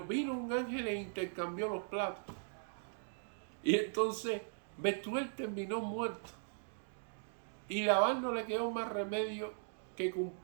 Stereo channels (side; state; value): left; silent; digital silence